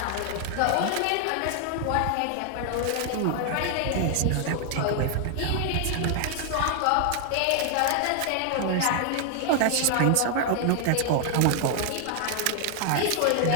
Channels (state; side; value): different; both; correlation 0.00